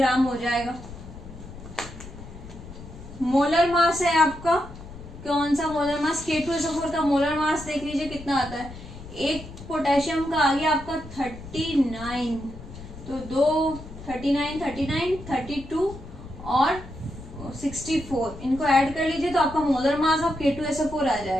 हो जाएगा। मोलर मास है आपका, कौन सा मोलर मास, K2SO4 का मोलर मास देख लीजिए कितना आता है। एक पोटेशियम का आ गया आपका 39, तो 2 39 39 32 और 64, इनको ऐड कर लीजिए तो आपका मोलर मास ऑफ K2SO4 आ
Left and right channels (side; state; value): left; noise; rumble, 14 dB below the sound